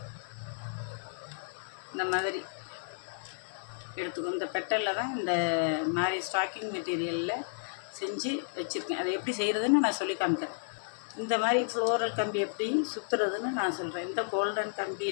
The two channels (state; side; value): silent; right; digital silence